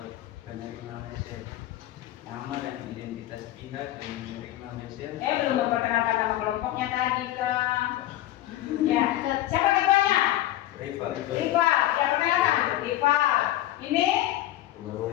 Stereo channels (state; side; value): quieter; right; 14.4 dB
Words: penerima mesel. Nama dan identitas pihak yang menerima mesel. Belum memperkenalkan nama kelompoknya tadi kak. Ya, siapa ketuanya? Rival. Riva. Ya, perkenalkan. Riva. Ini